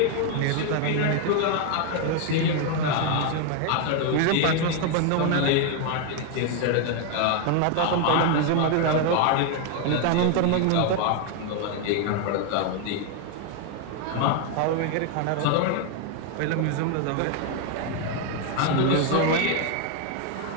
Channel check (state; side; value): different; both; correlation 0.01